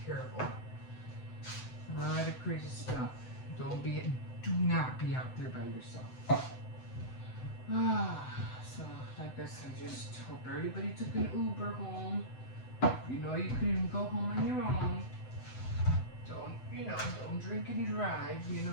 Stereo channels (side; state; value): right; late; 7.9 ms